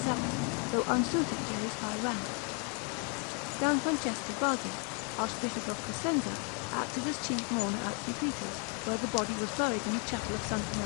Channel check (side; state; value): right; quieter; 37.9 dB